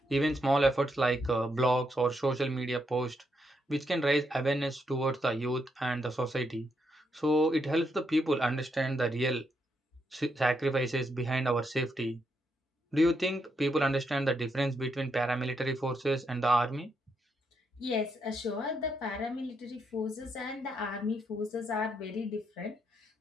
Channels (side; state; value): both; normal; correlation 0.79